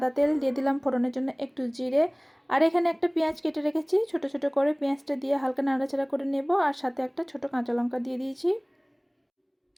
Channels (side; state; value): both; identical; correlation 1.00